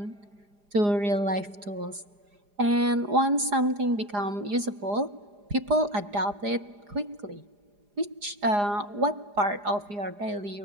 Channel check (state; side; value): late; left; 4.9 ms